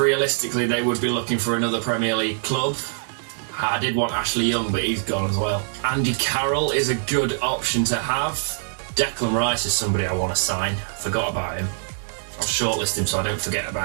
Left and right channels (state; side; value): silent; left; digital silence